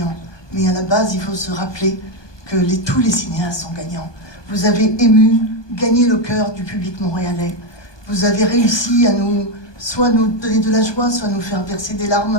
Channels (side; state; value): right; late; 1.2 ms